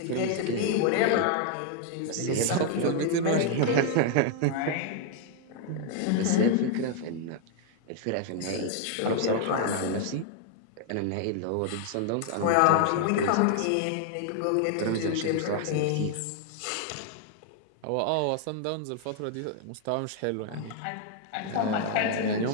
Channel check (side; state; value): both; different; correlation 0.00